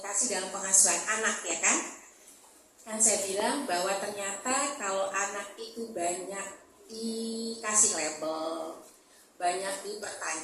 dalam pengasuhan anak, ya kan? Kan saya bilang bahwa ternyata kalau anak itu banyak dikasih label, banyak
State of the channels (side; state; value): both; identical; correlation 1.00